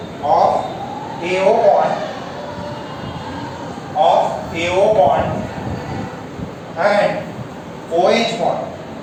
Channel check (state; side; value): identical; both; correlation 1.00